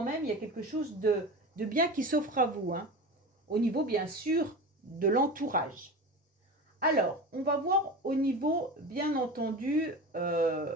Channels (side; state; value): both; normal; correlation 0.30